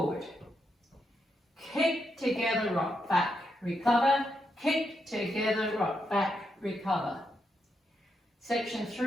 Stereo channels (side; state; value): both; normal; correlation 0.82